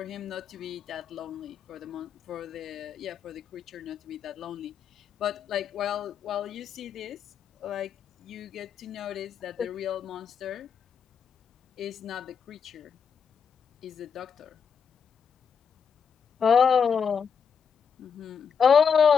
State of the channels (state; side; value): quieter; right; 6.7 dB